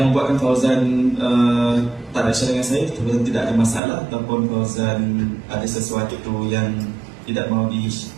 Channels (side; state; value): left; drops out; at 3.8 s